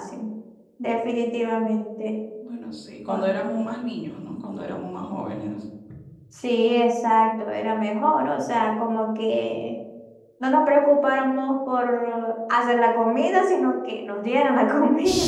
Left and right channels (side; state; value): both; identical; correlation 1.00